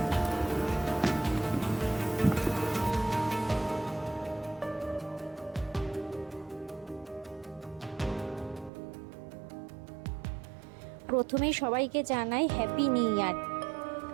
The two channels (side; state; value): left; drops out; at 8.7 s